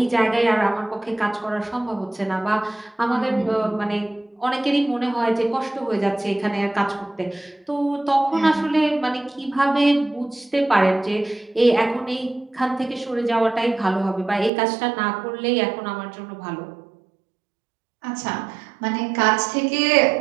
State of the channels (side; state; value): left; drops out; at 14.5 s